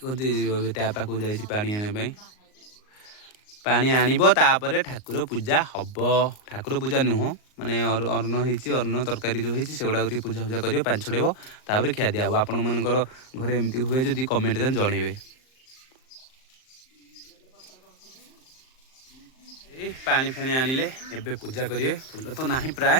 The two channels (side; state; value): right; late; 38 ms